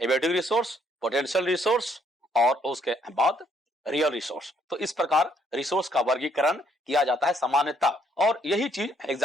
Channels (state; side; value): normal; both; correlation 0.69